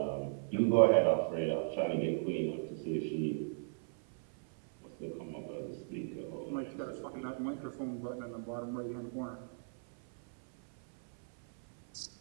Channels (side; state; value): left; silent; 53 dB below the other